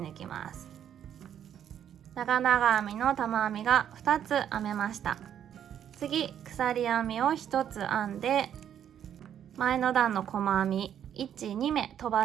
きます。長々編みの玉編みが2つ編めました。次、鎖編みを1つ編んで、前の段の細編み1、2目飛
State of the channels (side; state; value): left; quieter; 9.6 dB